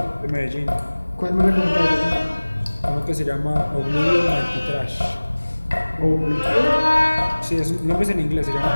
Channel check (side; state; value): both; inverted; correlation -1.00